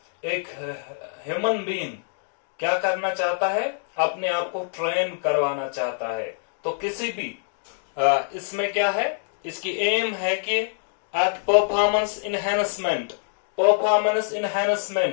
एक ह्यूमन बीइंग क्या करना चाहता है, अपने आप को ट्रेन करवाना चाहता है। तो किसी भी इसमें क्या है, इसकी एम है कि एट परफॉर्मेंस इनहेंसमेंट,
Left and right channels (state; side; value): silent; right; digital silence